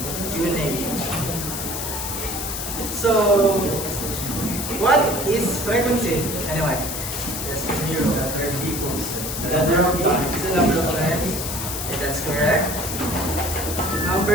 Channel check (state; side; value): noise; left; hiss, 5 dB below the sound